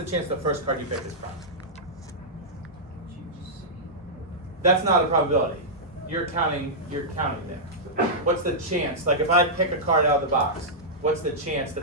chance the first card you pick is prime? That's not a probability. You're counting there. What's the chance, like if I pick a card out of the box, what's the chance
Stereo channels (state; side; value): normal; both; correlation -0.10